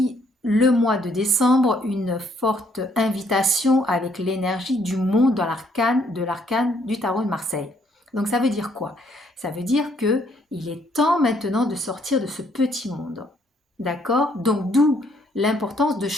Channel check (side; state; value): both; normal; correlation 0.68